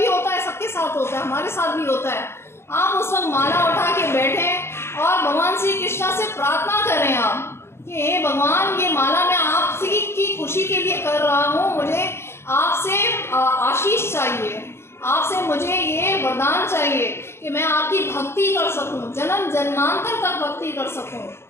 होता है, सबके साथ होता है, हमारे साथ भी होता है। आप उस वक्त माला उठा के बैठें और भगवान श्री कृष्ण से प्रार्थना करें आप कि हे भगवान, ये माला मैं आपकी की खुशी के लिए कर रहा हूँ, मुझे आपसे आशीष चाहिए, आपसे मुझे ये वरदान चाहिए कि मैं आपकी भक्ति कर सकूं, जन्म जन्मांतर तक भक्ति कर सकूं।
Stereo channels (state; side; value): late; right; 0.12 ms